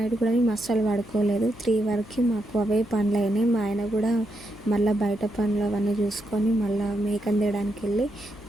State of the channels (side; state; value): left; noise; hum, 22 dB below the sound